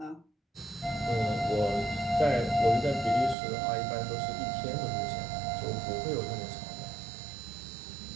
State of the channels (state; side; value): drops out; left; at 3.4 s